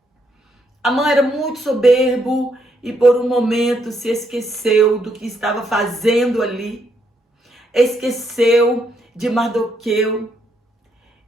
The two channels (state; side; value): normal; both; correlation 0.75